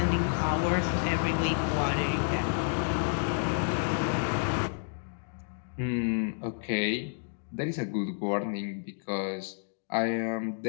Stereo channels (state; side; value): silent; right; digital silence